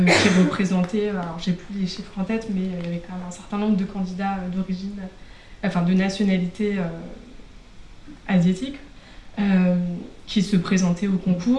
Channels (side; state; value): both; identical; correlation 1.00